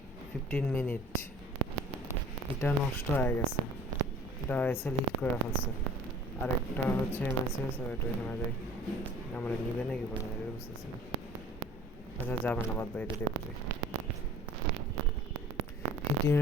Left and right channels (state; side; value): normal; both; correlation 0.49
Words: 15 মিনিট, এটা নষ্ট হয়ে গেছে, এটা এসএল হিট করে ফেলছে। আর একটা হচ্ছে মেসেজ, ওইটা এখানে যাই, আমরা নিবে নাকি বলে এটা বুঝতেছি না। আচ্ছা যাবে না, বাদ দাও, এটা দেখো যাই। 15